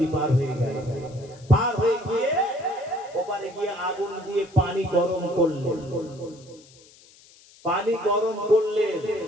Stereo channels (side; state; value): left; noise; hiss, 25 dB below the sound